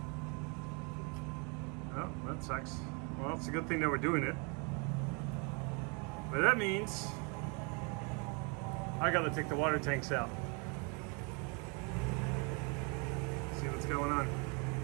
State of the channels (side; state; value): left; quieter; 33.2 dB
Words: Oh, that sucks. Well, it's a good thing that we're doing it. But that means I gotta take the water tanks out. See what's going on.